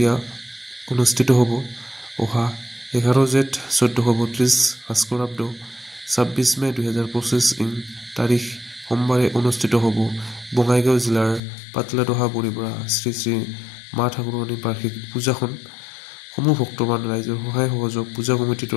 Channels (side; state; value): right; drops out; at 11.4 s